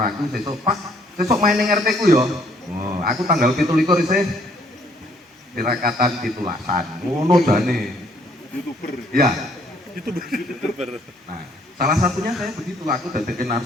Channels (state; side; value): normal; both; correlation 0.64